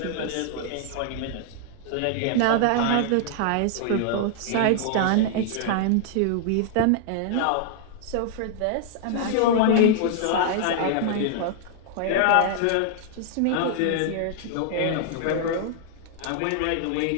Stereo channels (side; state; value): both; different; correlation -0.01